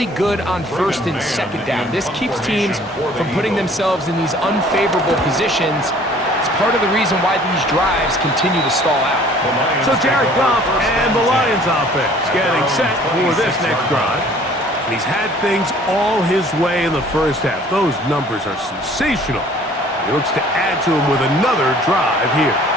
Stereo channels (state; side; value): normal; both; correlation 0.53